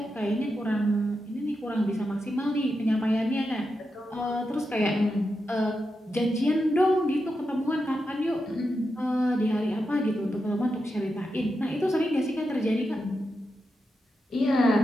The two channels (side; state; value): both; normal; correlation 0.87